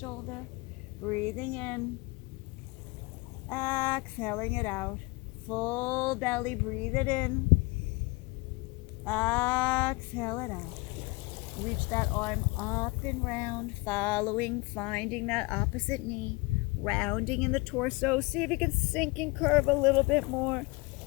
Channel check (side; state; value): right; quieter; 24.8 dB